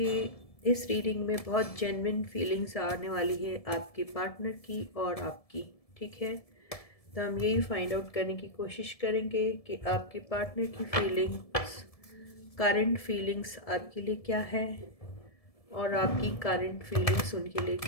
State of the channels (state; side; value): late; right; 1.7 ms